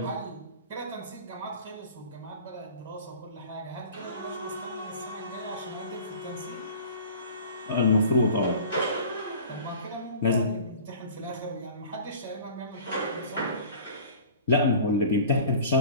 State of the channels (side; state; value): both; inverted; correlation -0.43